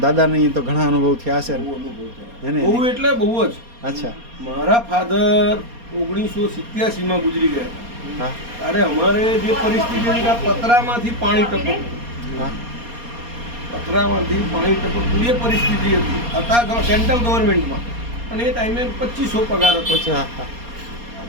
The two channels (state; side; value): late; left; 4.2 ms